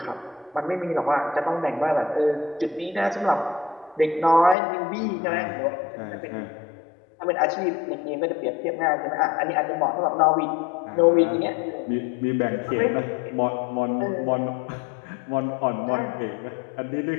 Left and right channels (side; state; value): right; drops out; at 4.5 s